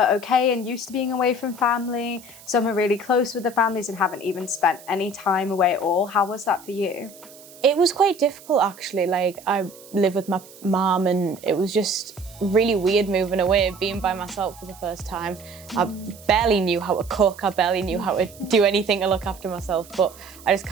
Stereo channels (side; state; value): right; noise; hiss, 21 dB below the sound